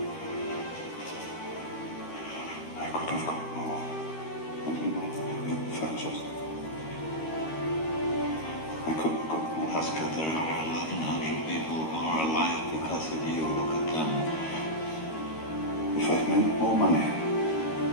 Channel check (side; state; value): right; late; 13 ms